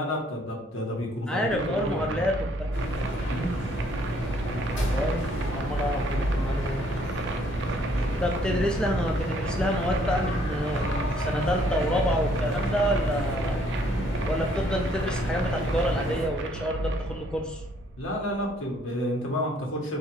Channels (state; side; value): normal; both; correlation 0.64